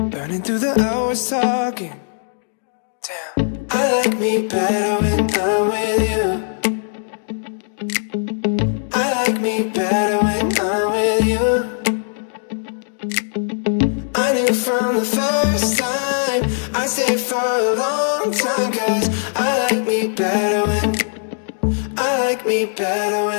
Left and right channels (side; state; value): right; silent; digital silence